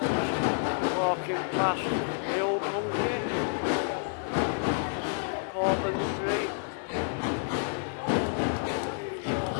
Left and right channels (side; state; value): right; silent; digital silence